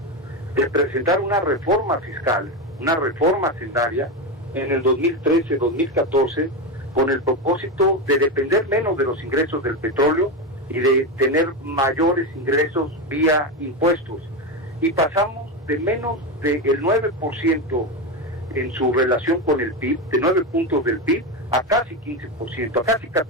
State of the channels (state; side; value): normal; both; correlation 0.14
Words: de presentar una reforma fiscal, una reforma hacendaria, en el 2013-2014, con el propósito de depender menos de los ingresos del petróleo y de tener mayores ingresos vía impuestos. Y pasamos de menos del 9% en su relación con el PIB, de 9 puntos del PIB, a casi 15%, a casi